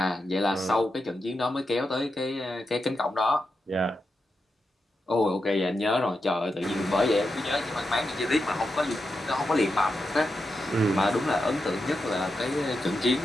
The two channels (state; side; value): normal; both; correlation 0.87